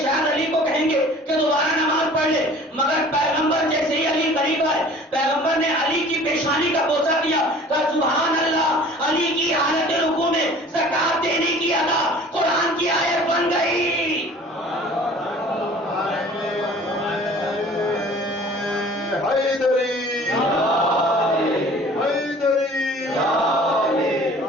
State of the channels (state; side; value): normal; both; correlation 0.47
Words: علی کو کہیں گے کہ دوبارہ نماز پڑھ لے, مگر پیغمبر جیسے ہی علی قریب آئے, پیغمبر نے علی کی پیشانی کا بوسہ دیا, کہا سبحان اللہ, علی کی حالت رکوع میں زکات دینے کی ادا قرآن کی آیت بن گئی. حیدری حیدری